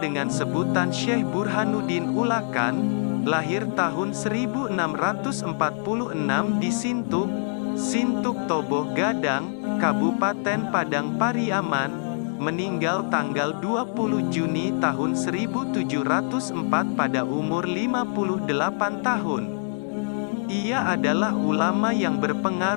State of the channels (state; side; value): silent; right; digital silence